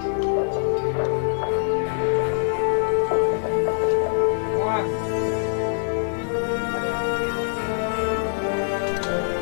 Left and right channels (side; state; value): right; silent; digital silence